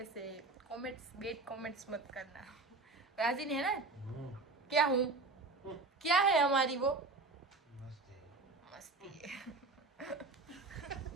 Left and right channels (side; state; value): left; quieter; 3.7 dB